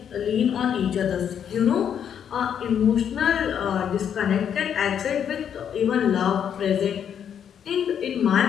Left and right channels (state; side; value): quieter; right; 8.5 dB